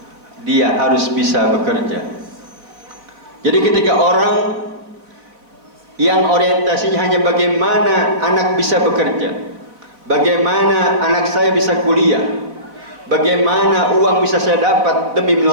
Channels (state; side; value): late; left; 3.9 ms